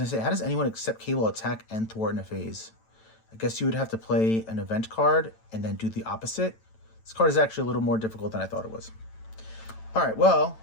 to say, how does anyone accept Cable attack and thwart in a phase? I guess you would have to play an event card and then do the opposite. This card is actually a little more difficult than I thought it was. All right, well,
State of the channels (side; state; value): right; late; 9.0 ms